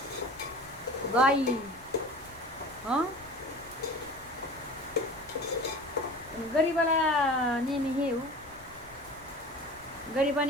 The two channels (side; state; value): left; noise; rumble, 24 dB below the sound